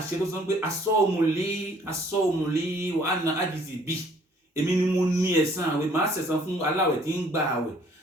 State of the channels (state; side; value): normal; both; correlation 0.59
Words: tó sọ pé asọ́ọ̀mùlé wà á na ájìsì bí èmi ni mo ní ẹ̀san àwẹ̀ máa ṣẹ̀san fún aláwẹ̀ tí ń gba àwẹ̀